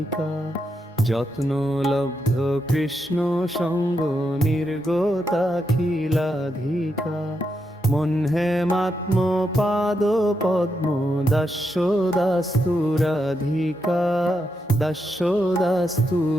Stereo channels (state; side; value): normal; both; correlation 0.83